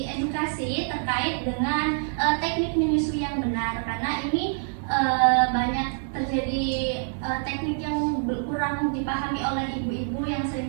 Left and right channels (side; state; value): left; silent; 61 dB below the other